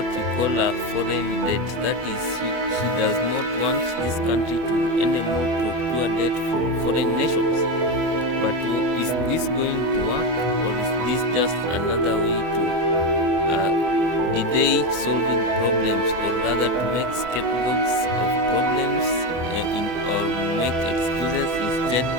we call a foreign debt. That is, he does not want this country to anymore procure debt from foreign nations. But is this going to work, or is this just another way to delay solving problems, or rather to make scapegoats of problems or make excuses instead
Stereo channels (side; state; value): left; late; 24 ms